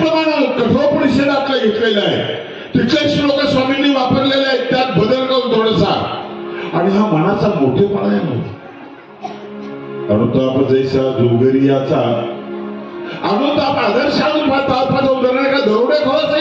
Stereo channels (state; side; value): identical; both; correlation 1.00